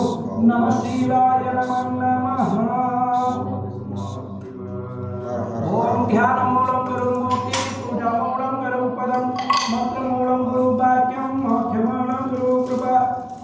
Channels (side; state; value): both; identical; correlation 1.00